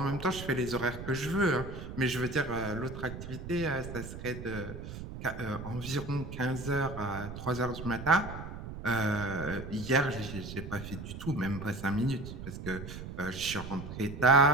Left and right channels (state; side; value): noise; right; rumble, 9 dB below the sound